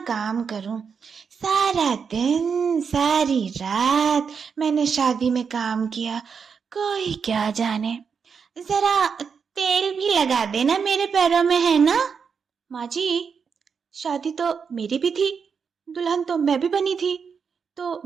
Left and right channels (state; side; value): quieter; left; 6.1 dB